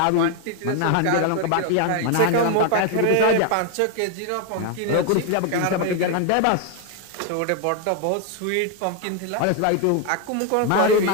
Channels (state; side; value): different; both; correlation 0.01